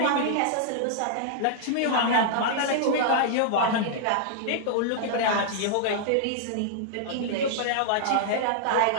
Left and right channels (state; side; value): different; both; correlation -0.01